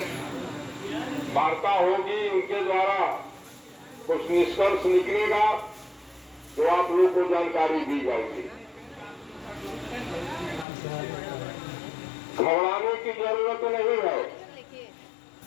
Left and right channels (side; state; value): right; drops out; at 10.7 s